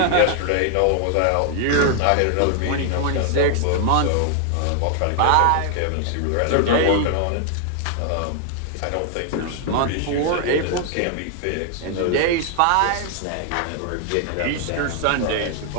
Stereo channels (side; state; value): both; different; correlation 0.00